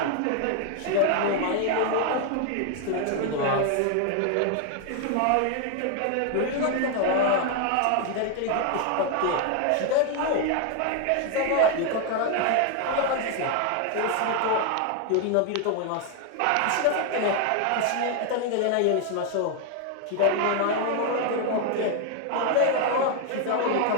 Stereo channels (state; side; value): different; both; correlation 0.00